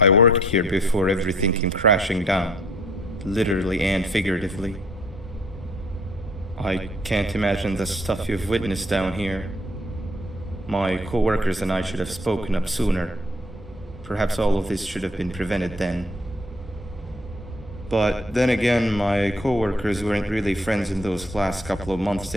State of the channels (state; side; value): normal; both; correlation 0.59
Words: worked here before everything came crashing down. Literally and figuratively. I can't imagine the stuff you've witnessed down here. My co-workers and I should have spoken up sooner. Perhaps all of this should have been prevented then. But then again, my co-workers weren't really friends in those last couple of months